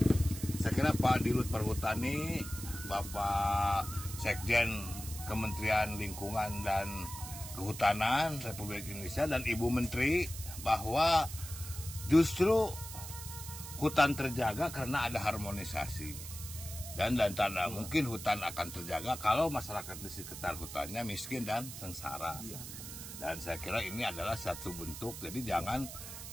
saya kira Pak Dirut Perhutani, Bapak Sekjen Kementerian Lingkungan dan Kehutanan Republik Indonesia dan Ibu Menteri, bahwa justru hutan terjaga karena ada harmonisasi. Dan tanda mungkin hutan akan terjaga kalau masyarakat di sekitar hutannya miskin dan sengsara. Dan saya kira ini adalah satu bentuk, jadi jangan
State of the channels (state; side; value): noise; right; hiss, 10 dB below the sound